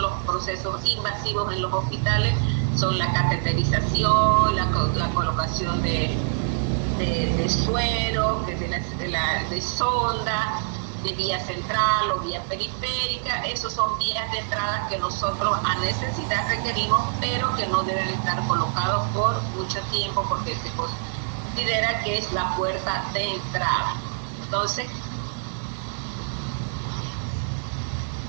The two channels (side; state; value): left; silent; digital silence